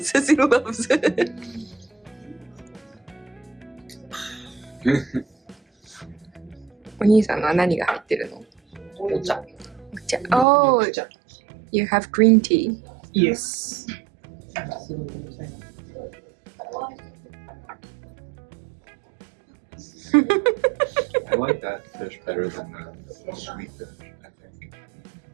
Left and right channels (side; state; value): left; drops out; at 10.5 s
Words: says he loves it. お兄さんのは何が入ってるの？お茶。お茶。Oh, you have green tea. Yes. I like that fish better than the sweet fish, I think.